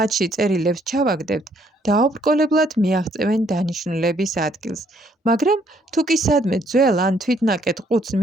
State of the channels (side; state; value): both; normal; correlation 0.67